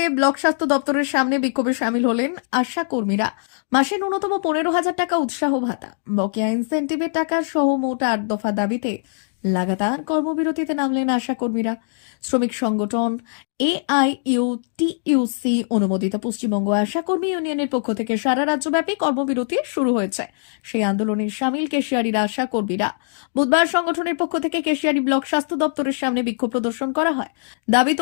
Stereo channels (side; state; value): right; silent; digital silence